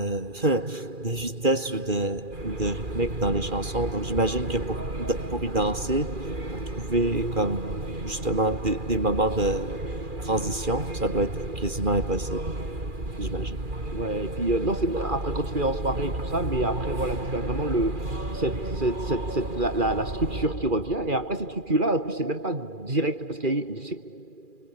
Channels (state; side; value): late; left; 2.4 ms